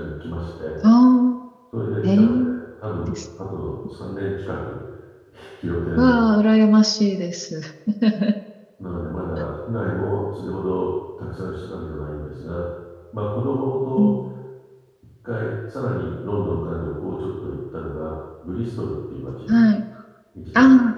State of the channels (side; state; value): both; identical; correlation 1.00